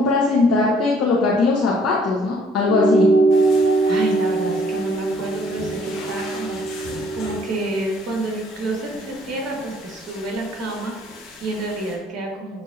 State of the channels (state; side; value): normal; both; correlation 0.61